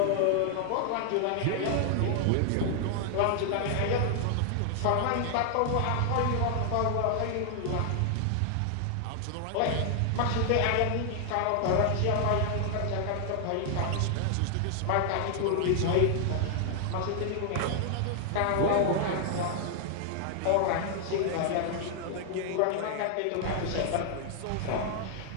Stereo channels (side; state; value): both; different; correlation 0.00